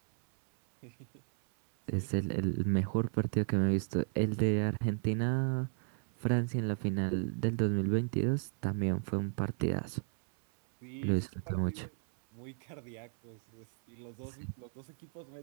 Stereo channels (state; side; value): silent; left; 55 dB below the other